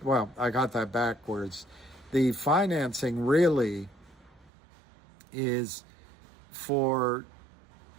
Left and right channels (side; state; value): left; drops out; at 4.5 s